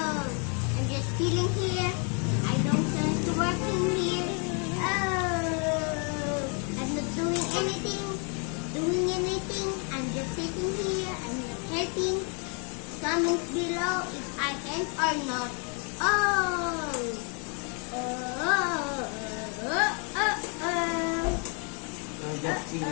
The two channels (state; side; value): quieter; right; 37.3 dB